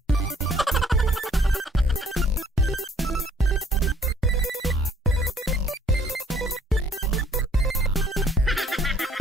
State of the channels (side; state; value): both; normal; correlation 0.59